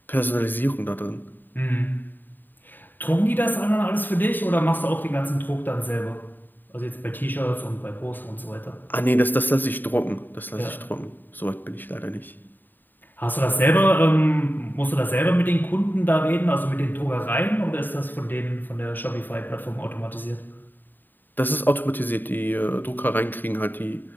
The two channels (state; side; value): late; right; 0.091 ms